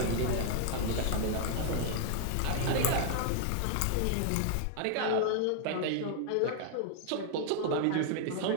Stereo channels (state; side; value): different; both; correlation -0.01